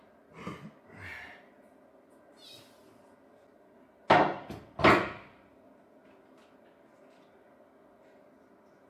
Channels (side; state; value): both; identical; correlation 1.00